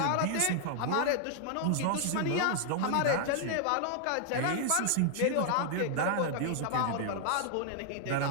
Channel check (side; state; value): both; different; correlation 0.00